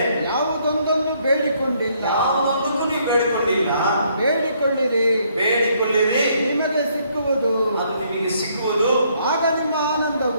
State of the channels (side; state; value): both; inverted; correlation -0.69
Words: ಯಾವುದೊಂದನ್ನು ಬೇಡಿಕೊಂಡಿಲ್ಲ. ಯಾವುದಕ್ಕೂ ನೀವು ಬೇಡಿಕೊಂಡಿಲ್ಲ. ಬೇಡಿಕೊಳ್ಳಿರಿ, ನಿಮಗೆ ಸಿಕ್ಕುವುದು. ಅದು ನಿಮಗೆ ಸಿಕ್ಕುವುದು. ಆಗ ನಿಮ್ಮ